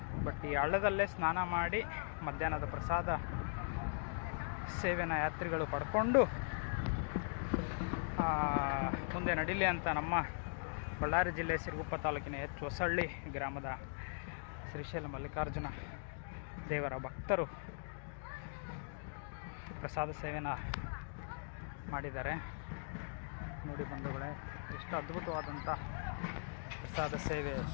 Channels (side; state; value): right; silent; digital silence